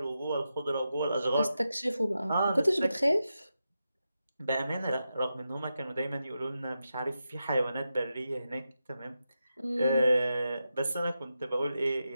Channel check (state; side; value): inverted; both; correlation -0.89